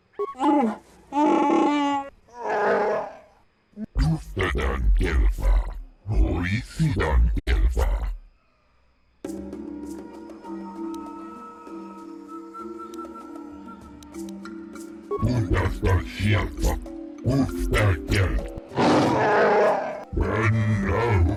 Tuftadan Gelfa, Horisidan Gelfa. Bundasta Shelfa, Ufta Gel. And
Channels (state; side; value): identical; both; correlation 1.00